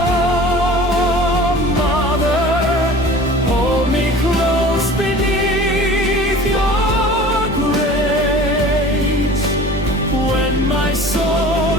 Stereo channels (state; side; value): normal; both; correlation 0.42